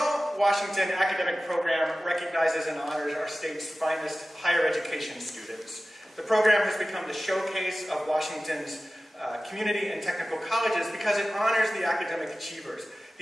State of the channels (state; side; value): normal; both; correlation 0.96